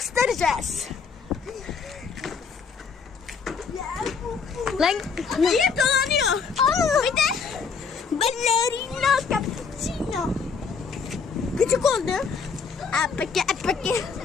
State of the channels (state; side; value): quieter; right; 5.6 dB